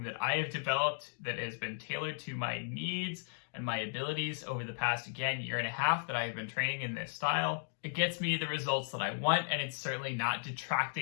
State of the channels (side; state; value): right; silent; digital silence